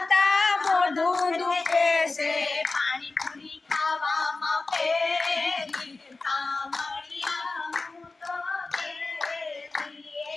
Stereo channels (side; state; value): right; quieter; 3.6 dB